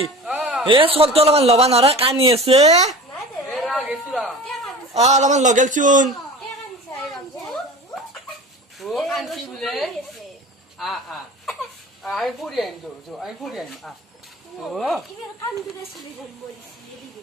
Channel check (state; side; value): normal; both; correlation 0.37